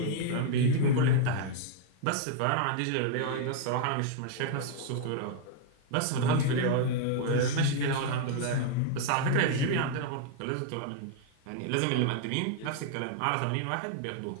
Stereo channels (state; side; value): different; both; correlation 0.00